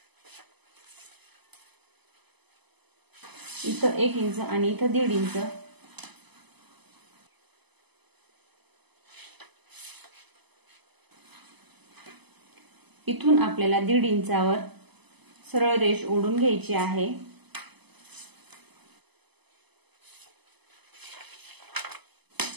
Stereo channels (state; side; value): late; left; 0.99 ms